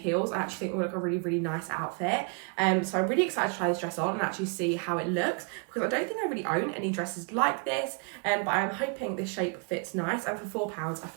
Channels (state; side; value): quieter; left; 37.2 dB